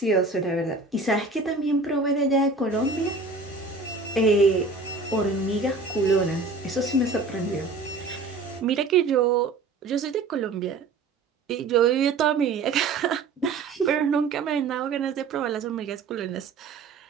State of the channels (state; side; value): quieter; left; 4.0 dB